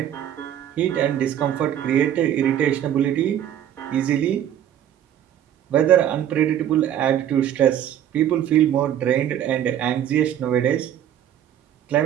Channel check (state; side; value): quieter; left; 10.6 dB